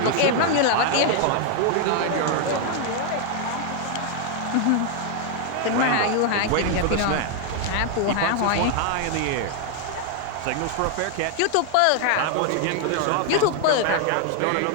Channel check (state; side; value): different; both; correlation 0.00